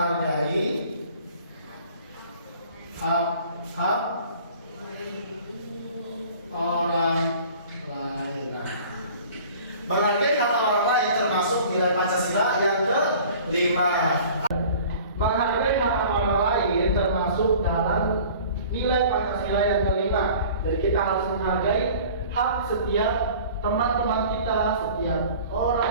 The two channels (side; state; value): both; inverted; correlation -0.47